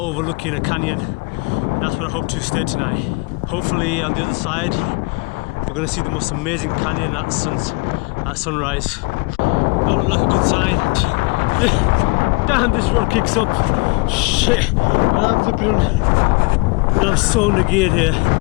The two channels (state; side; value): quieter; right; 28.1 dB